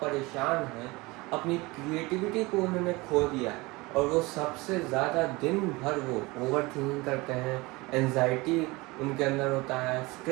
परेशान हैं, अपनी क्रिएटिविटी को उन्होंने खो दिया और वो सबसे ज़्यादा दिन भर वो ओवर थिंकिंग करते हैं, एंजाइटी उनके अंदर होता है,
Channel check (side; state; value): left; quieter; 23.1 dB